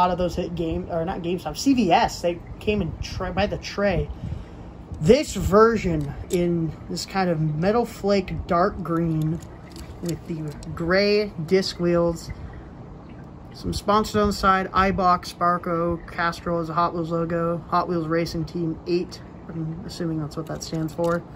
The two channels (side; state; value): both; identical; correlation 1.00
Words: of those hit game, or not GameStop, CVS. They came in by the tray. This version in this kind of metal flake dark green with the gray disc wheels, some sponsors on the side, iBox, Sparco, Castrol is a Hot Wheels logo, Hot Wheels Racing Team 8, I'm assuming that's what that stands for.